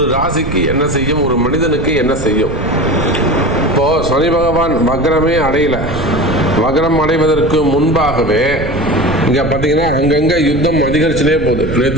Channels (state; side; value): noise; right; rumble, 7 dB below the sound